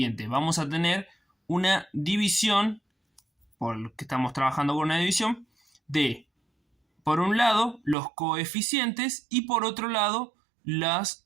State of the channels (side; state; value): left; drops out; at 8.0 s